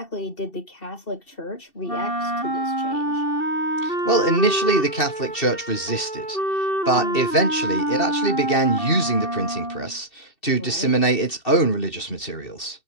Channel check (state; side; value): late; right; 2.7 ms